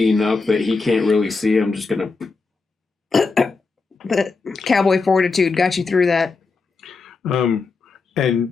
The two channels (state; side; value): quieter; right; 4.2 dB